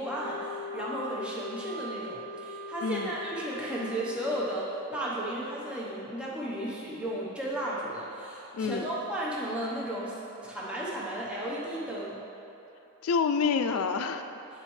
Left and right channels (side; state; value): both; normal; correlation 0.19